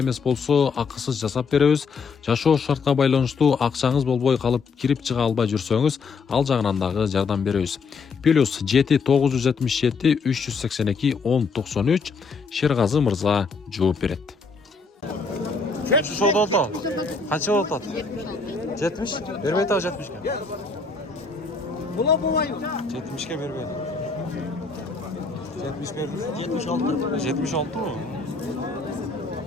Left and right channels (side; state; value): right; quieter; 4.7 dB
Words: болсо, акысыз жасап беребиз. Жашоо шартка байланыштуу акчаңыз болбой калып, кирип чыга албай жүрсөңүз, ал жагынан дагы жардам беребиз. Плюс 7-977 382 1093 Шергазы мырза жооп берет. Şu soda da. Kaç oldu? 70. Vermeyi taş 70 ke. Buna bulayım. 70 ke vermeyi. 70 verdi. 76. 76 mı?